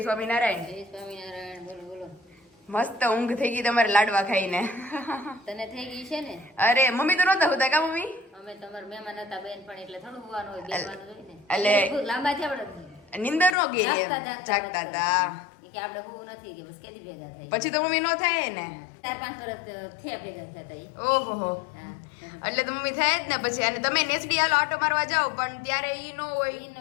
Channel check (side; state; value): right; drops out; at 13.6 s